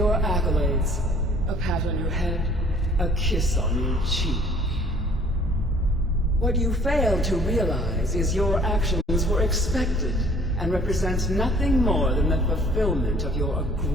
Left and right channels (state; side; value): normal; both; correlation 0.55